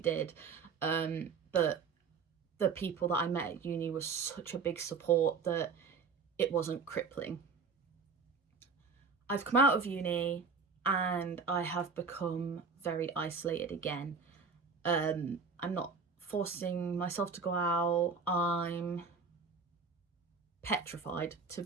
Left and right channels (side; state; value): left; quieter; 5.1 dB